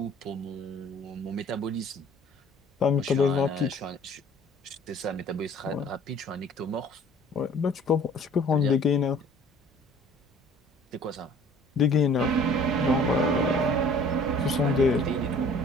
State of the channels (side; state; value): both; normal; correlation 0.52